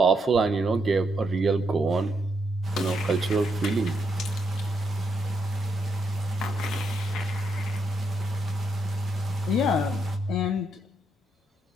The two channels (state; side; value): normal; both; correlation 0.79